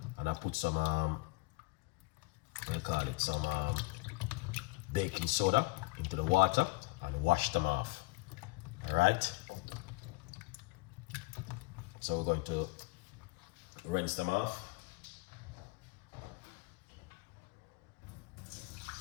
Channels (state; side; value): quieter; right; 23.7 dB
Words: and I put some some baking soda into the water and wash them off. All right. So we're going to rinse them off.